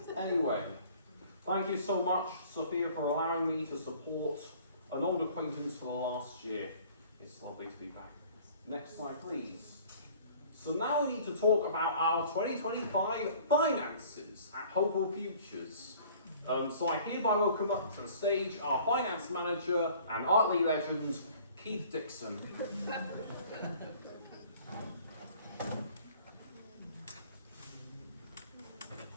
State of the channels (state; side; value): inverted; both; correlation -0.51